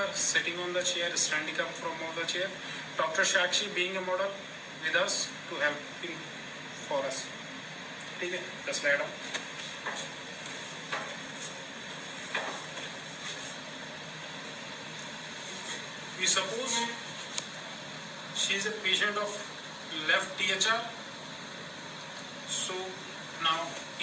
sitting on the chair, standing up from the chair. Dr. Shakshi being a model with us to help for us. ठीक है, the slide on. We suppose she is a patient of left THR. So now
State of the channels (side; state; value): both; identical; correlation 1.00